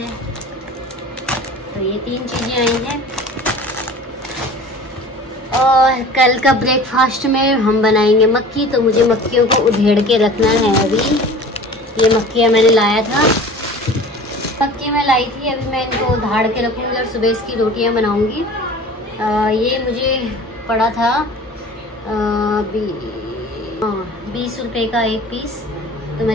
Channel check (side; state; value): both; normal; correlation 0.42